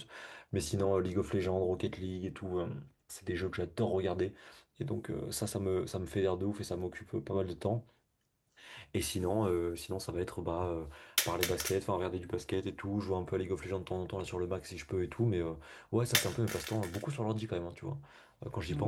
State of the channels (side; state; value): both; identical; correlation 1.00